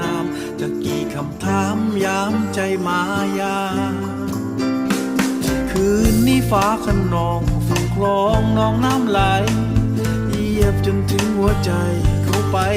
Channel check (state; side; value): identical; both; correlation 1.00